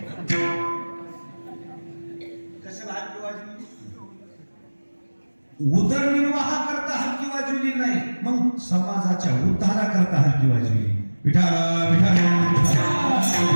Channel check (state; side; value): inverted; both; correlation -1.00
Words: कशाला हलकी वाजविली? उदरनिर्वाह करता हलकी वाजविली नाही, मग समाजाच्या उद्धारा करता हलकी वाजविली. विठाला विठाला.